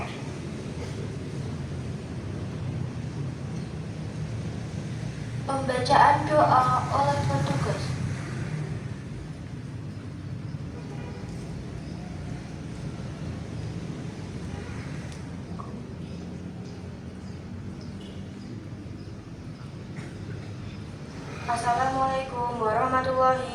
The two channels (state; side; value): identical; both; correlation 1.00